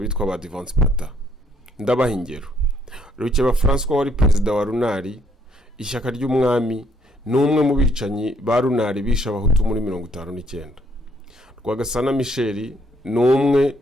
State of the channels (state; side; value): normal; both; correlation 0.69